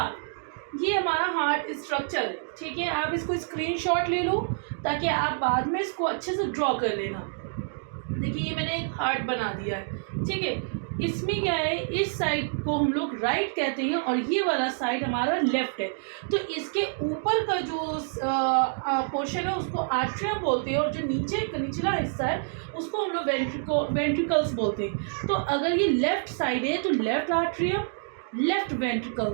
ये हमारा हार्ट स्ट्रक्चर है, ठीक है। आप इसको स्क्रीनशॉट ले लो ताकि आप बाद में इसको अच्छे से ड्रॉ कर लेना। देखिए ये मैंने एक हार्ट बना दिया है, ठीक है। इसमें क्या है, इस साइड को हम लोग राइट कहते हैं और ये वाला साइड हमारा लेफ्ट है। तो इसके ऊपर का जो पोर्शन है उसको आर्ट्रियम बोलते हैं और जो निचला हिस्सा है उसको हम लोग वेंट्रिकल्स बोलते हैं। तो अगर ये लेफ्ट साइड है तो left atrium, left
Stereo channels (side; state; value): left; silent; digital silence